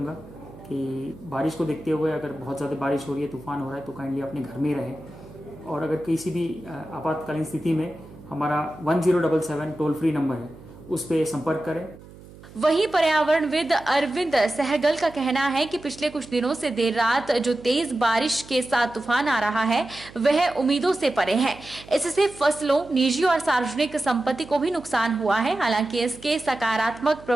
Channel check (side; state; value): right; noise; hum, 20 dB below the sound